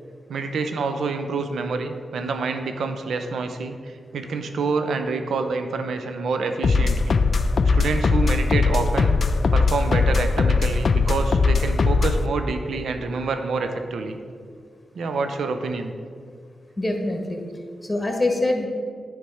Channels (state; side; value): normal; both; correlation 0.84